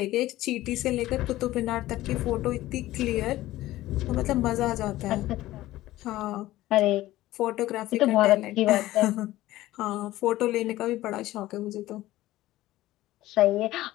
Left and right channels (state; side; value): quieter; right; 16.1 dB